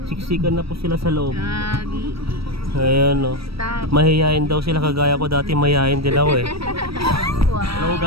Siksikan na po sila sa loob. Ayan o. Mahihayin daw sila, kagaya ko dati mahihayin din ako eh. Hello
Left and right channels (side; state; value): left; late; 0.76 ms